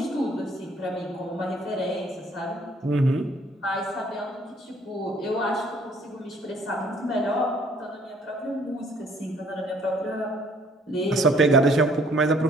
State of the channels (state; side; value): normal; both; correlation 0.60